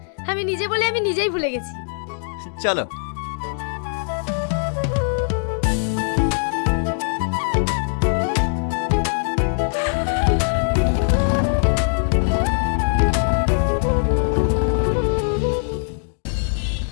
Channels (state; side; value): silent; right; digital silence